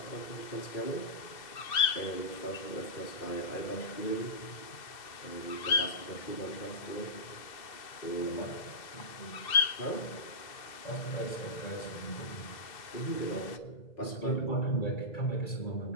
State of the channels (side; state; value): right; late; 2.0 ms